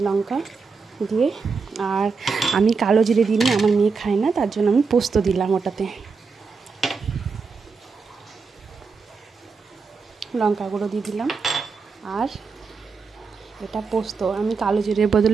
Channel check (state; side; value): quieter; left; 4.9 dB